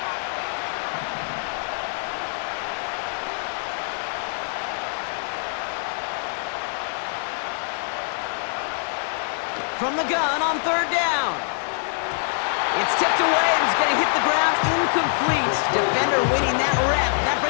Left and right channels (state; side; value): silent; right; digital silence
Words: From the gun on third down. It's tipped away and it's going to hit the ground incomplete. Defender winning that rep. That